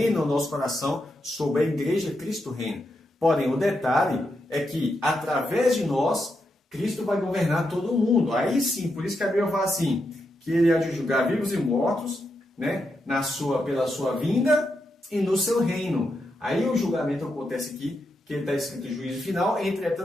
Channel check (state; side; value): normal; both; correlation 0.84